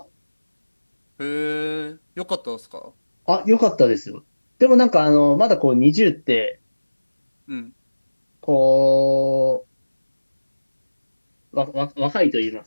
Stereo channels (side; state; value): both; inverted; correlation -1.00